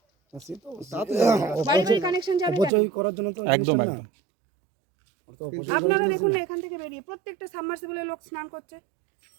বাড়ি বাড়ি কানেকশন যাবে অপচয় করার জন্য তো একদম জিনিসটা না। একদম। আপনারা দেখুন না এখান থেকে বেরিয়ে প্রত্যেকটা সাবমার্সিবলে লোক স্নান করছে,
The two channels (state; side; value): drops out; left; at 2.7 s